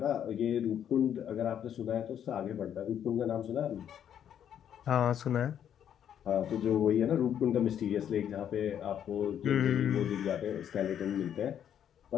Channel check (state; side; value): quieter; right; 9.4 dB